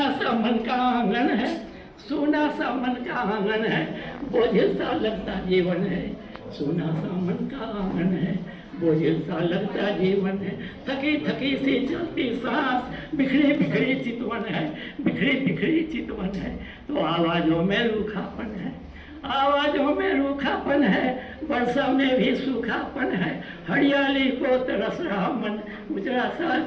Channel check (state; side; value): identical; both; correlation 1.00